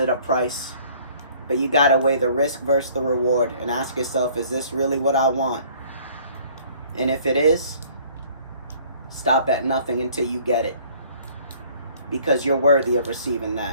a price. But you gotta weigh the risk versus the reward and ask yourself, is this really what I want? And if it is, stop at nothing until you get it. Because you're worthy of receiving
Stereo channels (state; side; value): inverted; both; correlation -0.55